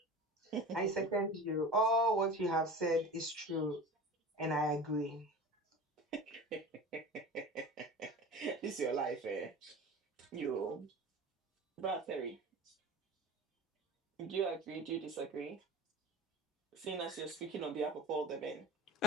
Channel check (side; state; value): both; normal; correlation 0.35